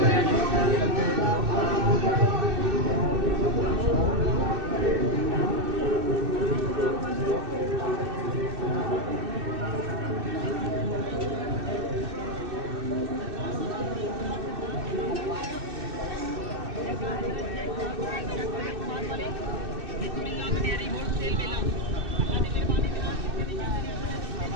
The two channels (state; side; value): late; left; 2.6 ms